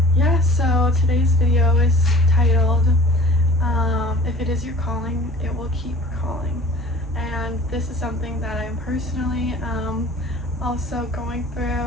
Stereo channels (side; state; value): right; noise; hum, 18 dB below the sound